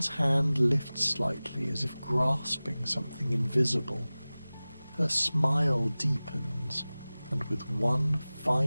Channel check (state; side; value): inverted; both; correlation -0.98